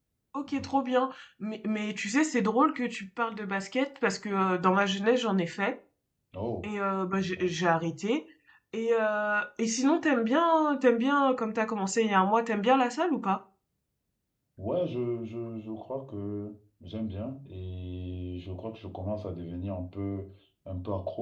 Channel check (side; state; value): both; identical; correlation 1.00